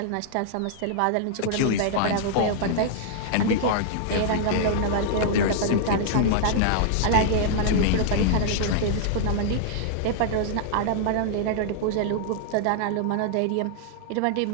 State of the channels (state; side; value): different; both; correlation -0.01